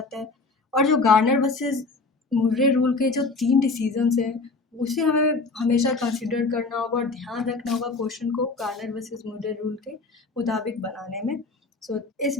है। और जो गार्नर वर्सेस मुर्रे रूल के जो 3 डिसीजंस हैं उसे हमें हमेशा कंसिडर करना होगा और ध्यान रखना होगा क्वेश्चन को गार्नर वर्सेस मुर्रे रूल के मुताबिक बनाने में। सो इस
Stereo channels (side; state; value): right; quieter; 3.8 dB